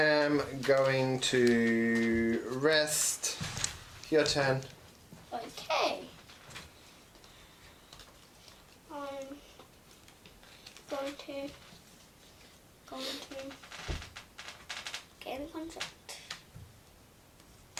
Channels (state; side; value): identical; both; correlation 1.00